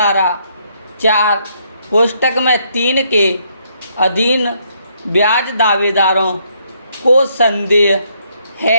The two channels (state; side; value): inverted; both; correlation -0.72